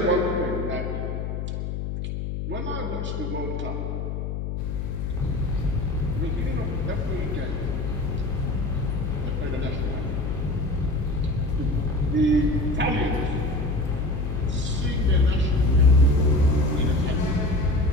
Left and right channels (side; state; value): left; noise; hum, 3 dB below the sound